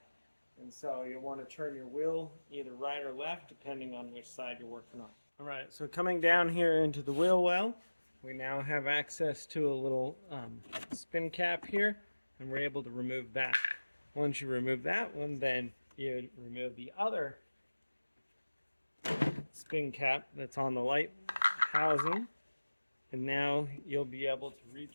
And so you'll want to turn your wheel either right or left depending on which side you're working on. Alright, so coming down here into the wheel well, we now have access to a little spin cap here, and we're able to remove that. Once you remove that one, then you remove the other spin cap that's on the light housing, and now you'll be able to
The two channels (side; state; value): both; inverted; correlation -1.00